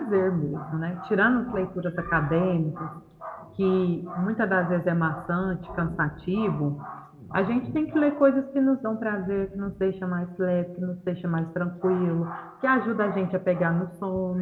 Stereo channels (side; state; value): both; identical; correlation 1.00